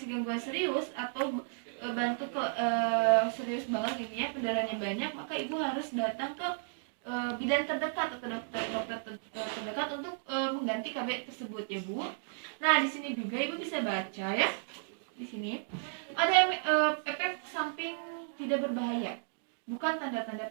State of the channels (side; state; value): left; silent; digital silence